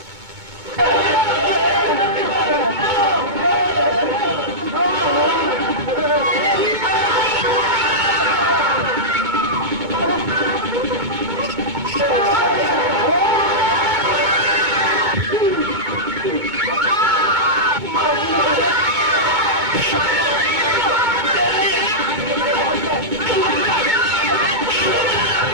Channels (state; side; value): late; left; 2.2 ms